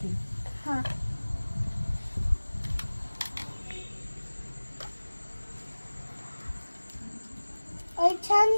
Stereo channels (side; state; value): both; inverted; correlation -1.00